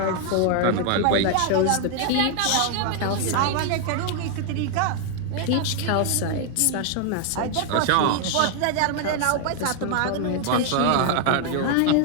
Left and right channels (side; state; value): both; different; correlation 0.00